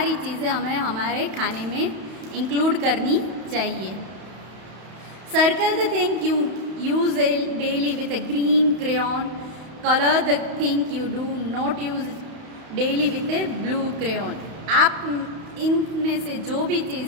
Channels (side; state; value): left; late; 31 ms